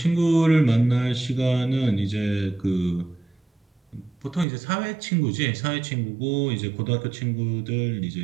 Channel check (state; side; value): drops out; left; at 4.5 s